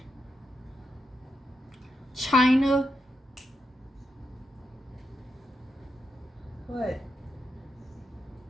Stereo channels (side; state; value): both; normal; correlation 0.85